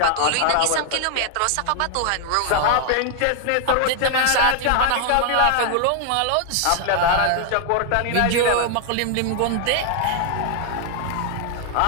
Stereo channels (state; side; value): different; both; correlation 0.00